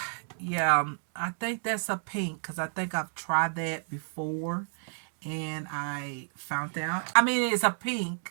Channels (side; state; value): left; silent; digital silence